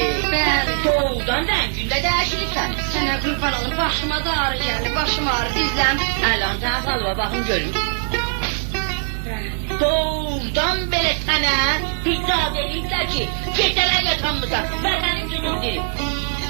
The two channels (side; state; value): left; silent; 64 dB below the other